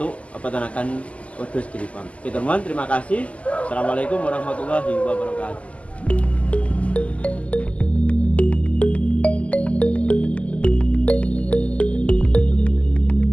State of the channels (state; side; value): late; right; 0.065 ms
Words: peternakan Wedhus Giri Farm. Oke teman-teman, terima kasih. Assalamualaikum warahmatullahi wabarakatuh.